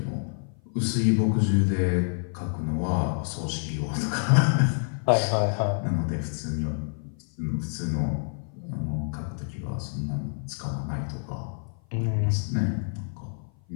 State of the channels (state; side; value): silent; right; 55 dB below the other